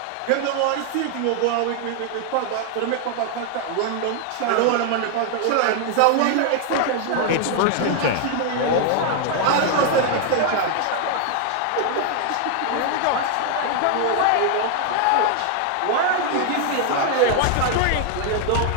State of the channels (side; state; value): both; different; correlation 0.00